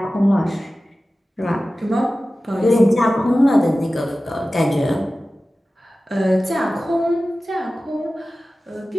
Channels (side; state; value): both; normal; correlation 0.96